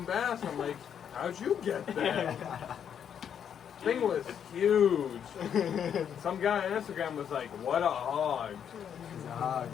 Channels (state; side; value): quieter; right; 8.4 dB